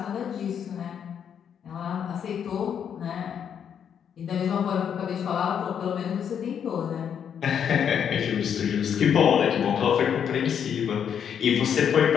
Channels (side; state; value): right; quieter; 8.2 dB